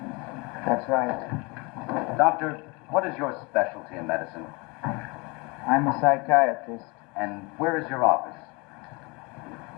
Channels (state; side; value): quieter; right; 27.7 dB